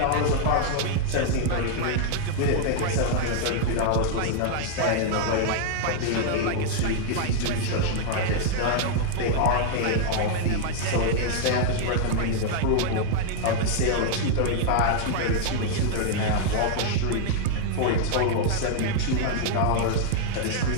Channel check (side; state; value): both; different; correlation -0.01